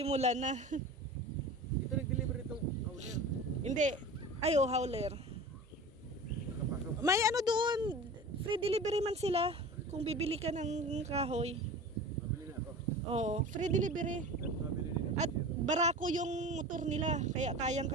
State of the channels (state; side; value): normal; both; correlation 0.35